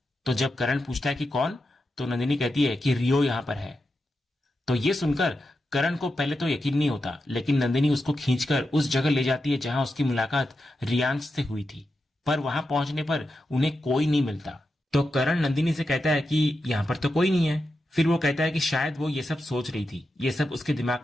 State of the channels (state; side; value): normal; both; correlation 0.88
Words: तो जब करण पूछता है कि कौन, तो नंदिनी कहती है कि रियो यहां पर है। तो ये सुनकर करण को पहले तो यकीन नहीं होता, लेकिन नंदिनी उसको खींचकर उस जगह ले जाती है जहां उसकी मुलाकात रियांश से हुई थी। पर वहां पहुंचने पर उन्हें कोई नहीं मिलता। तो करण नंदिनी से कहता है कि यहां पर तो कोई नहीं है। फिर वो कहता है कि शायद वो ये सब सोच रही थी, ये सब उसके